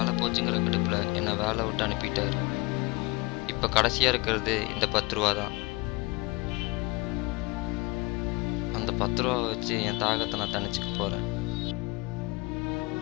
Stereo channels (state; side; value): quieter; right; 24.8 dB